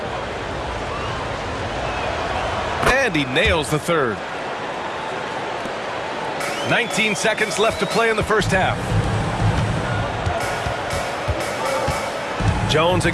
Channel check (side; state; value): both; identical; correlation 1.00